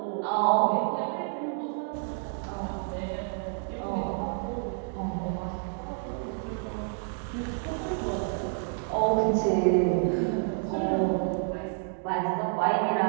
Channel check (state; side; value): silent; left; 59 dB below the other